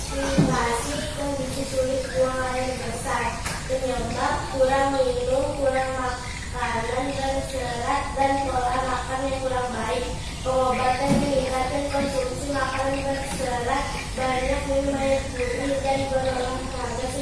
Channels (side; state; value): both; identical; correlation 1.00